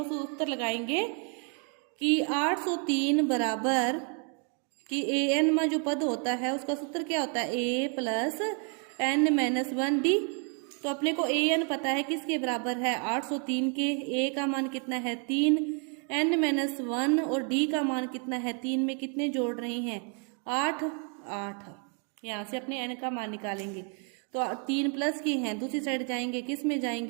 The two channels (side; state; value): left; quieter; 39.9 dB